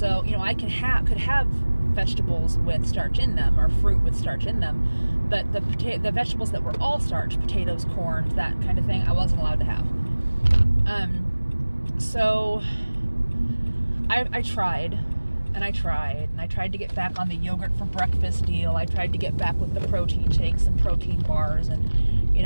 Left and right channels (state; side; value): inverted; both; correlation -1.00